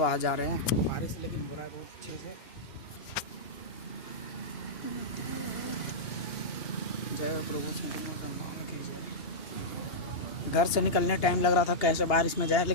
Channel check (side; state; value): right; late; 2.9 ms